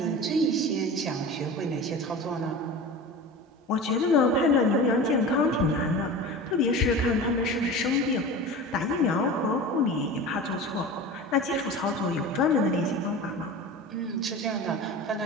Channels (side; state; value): both; normal; correlation 0.33